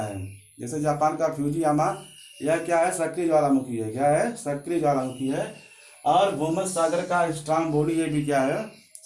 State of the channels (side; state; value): both; identical; correlation 1.00